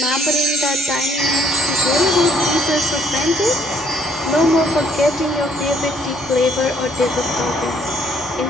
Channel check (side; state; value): both; normal; correlation 0.65